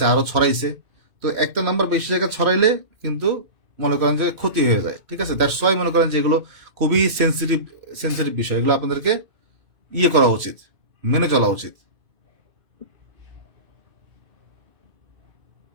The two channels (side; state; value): left; late; 2.6 ms